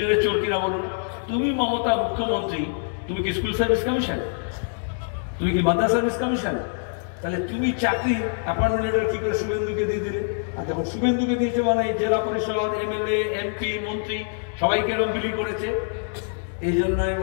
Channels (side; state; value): right; silent; digital silence